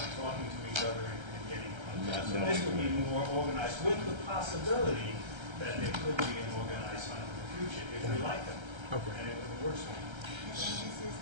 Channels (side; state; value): left; late; 1.3 ms